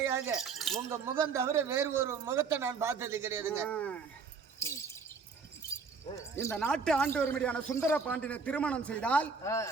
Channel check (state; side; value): quieter; left; 5.1 dB